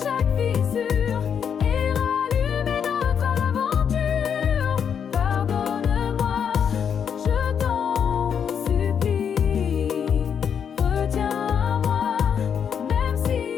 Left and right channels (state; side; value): quieter; right; 7.6 dB